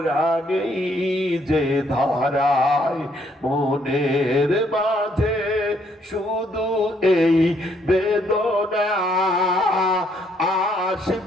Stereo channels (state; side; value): normal; both; correlation 0.69